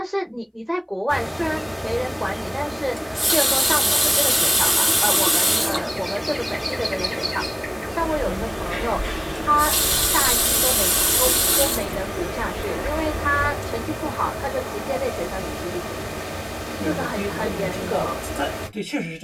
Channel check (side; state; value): both; identical; correlation 1.00